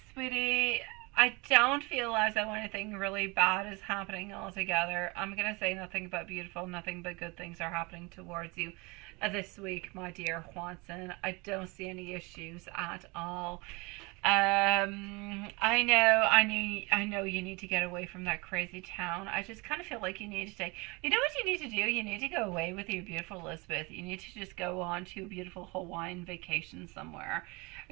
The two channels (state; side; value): quieter; left; 26.6 dB